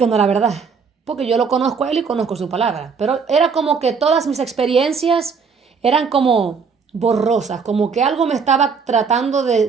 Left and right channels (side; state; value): left; quieter; 5.6 dB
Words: no era verdad. Porque yo lo conozco a Él y conozco su palabra. Pero era como que todas mis experiencias eran como borrosas. Como que algo me estaba tratando